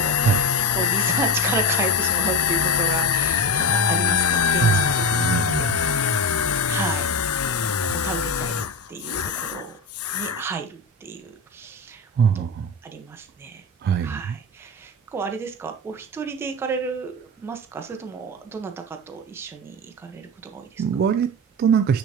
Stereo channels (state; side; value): normal; both; correlation 0.21